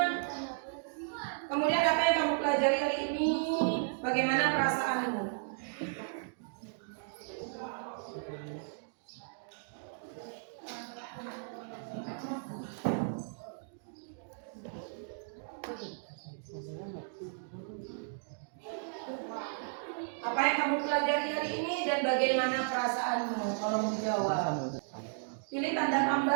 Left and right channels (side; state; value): left; silent; digital silence